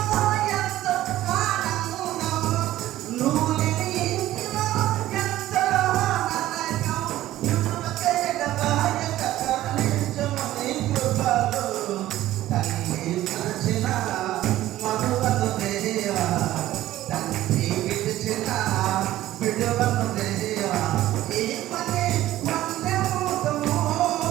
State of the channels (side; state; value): left; quieter; 14.6 dB